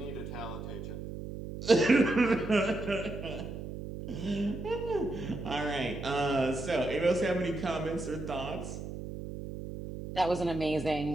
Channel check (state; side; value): noise; right; hum, 8 dB below the sound